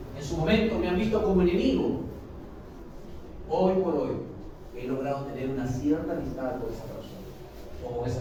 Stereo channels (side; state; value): both; identical; correlation 1.00